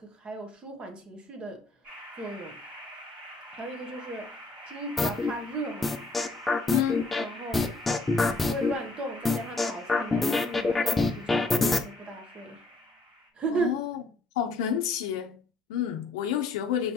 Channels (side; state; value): right; quieter; 3.2 dB